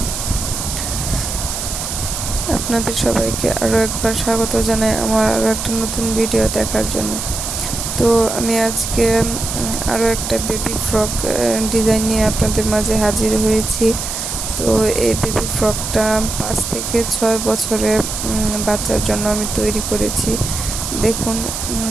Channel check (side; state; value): right; noise; hiss, 5 dB below the sound